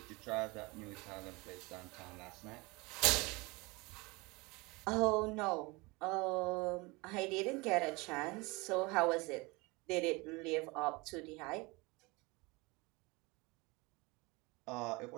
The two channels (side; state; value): left; quieter; 25.2 dB